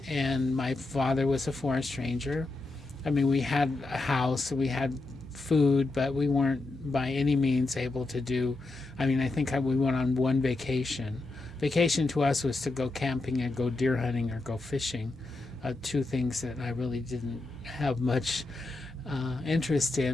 and my father was a foreign stranger. I mean, we had a house, we had food, but we weren't by any means able to do, I mean, I think we went on one vacation. Vacation to us was to go camping and go deer hunting or go fishing, 2 things that I really didn't have much interest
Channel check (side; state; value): right; quieter; 3.1 dB